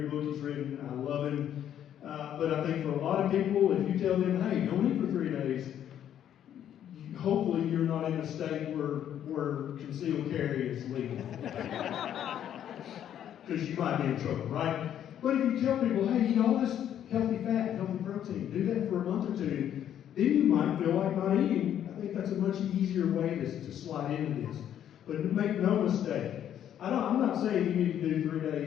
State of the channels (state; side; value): quieter; right; 10.2 dB